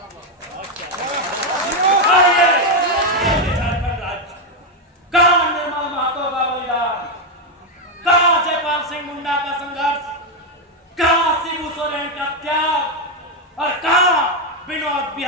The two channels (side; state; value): both; normal; correlation 0.05